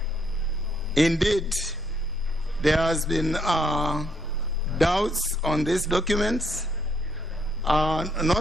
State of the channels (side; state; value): both; normal; correlation 0.71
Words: Indeed, there has been doubts on these documents,